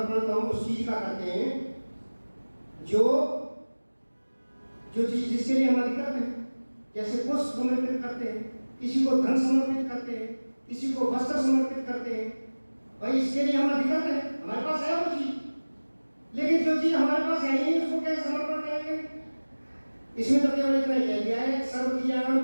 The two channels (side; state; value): both; inverted; correlation -1.00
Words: तो हम उस चीज का करते हैं जो चीज जिसके लिए हम अधिकृत हैं। जैसे पुष्प समर्पित करते हैं, किसी को धन समर्पित करते हैं, किसी को वस्त्र समर्पित करते हैं। भाई इसके लिए हम अधिकृत हैं, हमारे पास है वो चीज, लेकिन जो चीज हमारे पास है ही नहीं उसको कैसे समर्पण करेंगे? इसमें तो केवल इतना ही कह दिया है, सर्व क्रियाओं